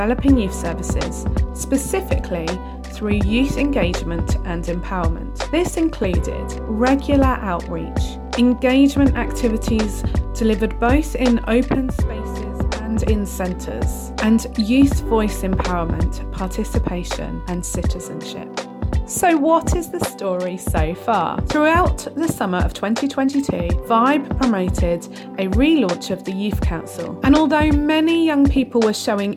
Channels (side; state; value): both; identical; correlation 1.00